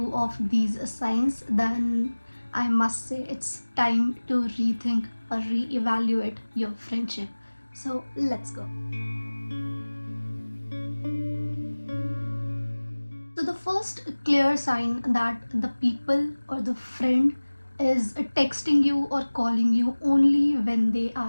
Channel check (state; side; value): inverted; both; correlation -1.00